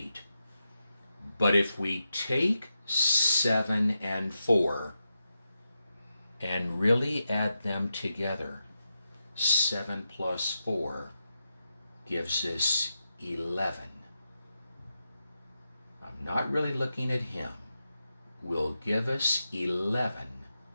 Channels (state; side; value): inverted; both; correlation -0.87